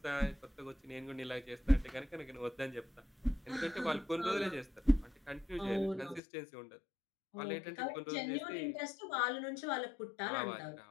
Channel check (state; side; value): drops out; right; at 6.2 s